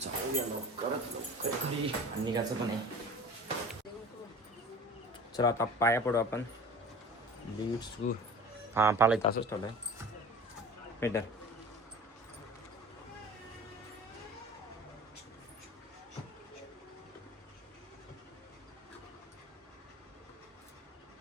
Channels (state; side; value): normal; both; correlation 0.39